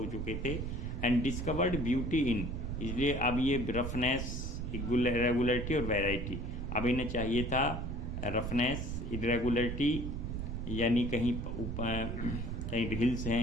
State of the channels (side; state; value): right; noise; rumble, 4 dB below the sound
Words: चुके थे। एंड डिस्कवर्ड ब्यूटी इन, इसलिए अब ये रफनेस, इरेगुलरिटी और वैरायटी, अब इन्हें चाहिए था रफनेस, इरेगुलरिटी, यानी कहीं कहीं हिल्स